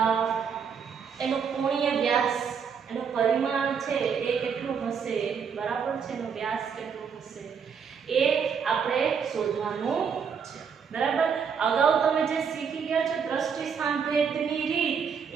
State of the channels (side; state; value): left; quieter; 6.7 dB